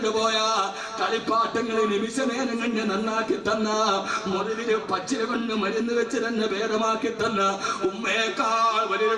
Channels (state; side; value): identical; both; correlation 1.00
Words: കളിപ്പാട്ടങ്ങളെ നിമിഷ നേരം കണ്ട് നന്നാക്കി തന്ന മുറിവില് പച്ചില കൊണ്ട് മരുന്ന് വെച്ച് തന്നെ ഭേദമാക്കി തന്ന ഉമ്മയേക്കാൾ വലിയൊരു